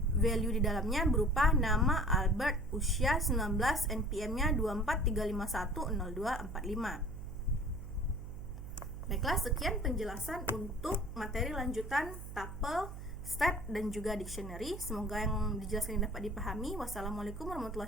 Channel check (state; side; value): noise; right; hum, 10 dB below the sound